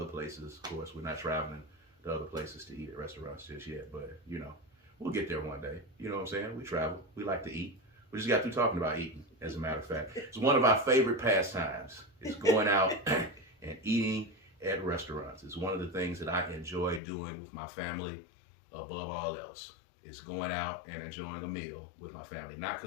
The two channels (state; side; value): drops out; right; at 17.0 s